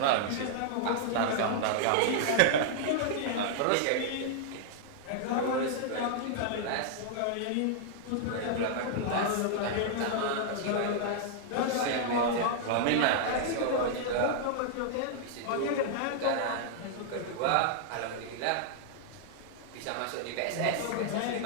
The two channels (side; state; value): both; different; correlation -0.01